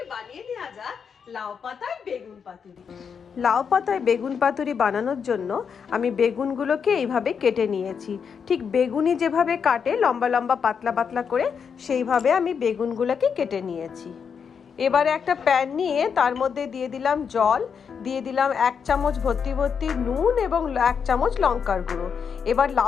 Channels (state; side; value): quieter; right; 6.6 dB